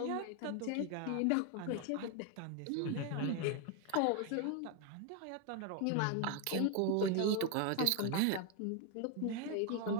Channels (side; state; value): both; different; correlation 0.01